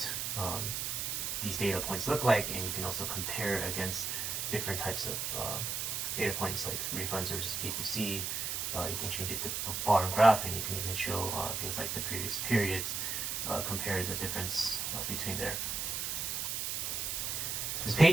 these data points look like, and you can also compare against different types of data points like refunds versus PPC. You can change it to bar and graph, and you can even show things like the previous periods, compare the difference between there. This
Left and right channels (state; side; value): noise; right; hiss, 1 dB below the sound